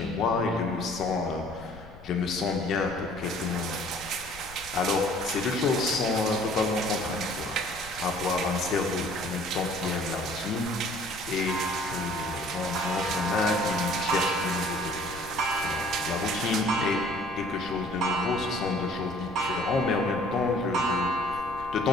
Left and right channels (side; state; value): left; noise; rumble, 18 dB below the sound